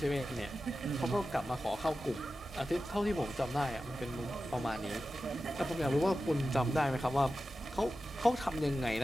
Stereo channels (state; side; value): normal; both; correlation 0.93